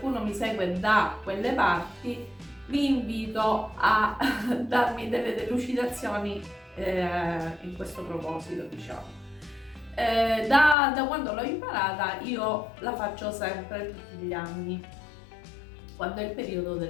mi segue da quelle parti vi invito a darmi delle delucidazioni in questo proposito, diciamo. Da quando l'ho imparata io la faccio sempre tutti gli anni, quando è il periodo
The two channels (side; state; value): right; drops out; at 10.8 s